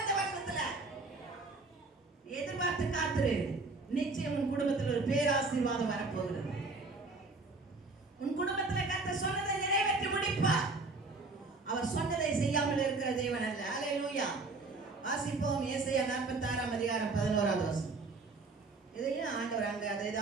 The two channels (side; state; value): left; quieter; 3.6 dB